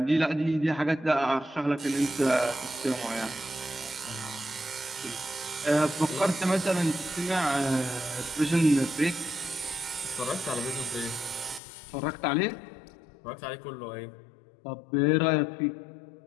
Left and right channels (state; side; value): drops out; right; at 11.6 s